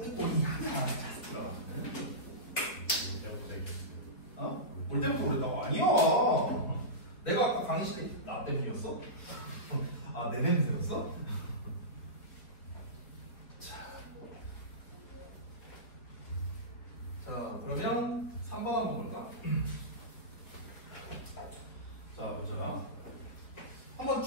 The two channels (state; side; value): late; right; 4.1 ms